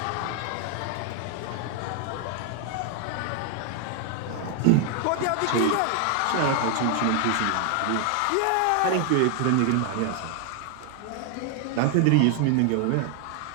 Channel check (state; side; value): different; both; correlation 0.00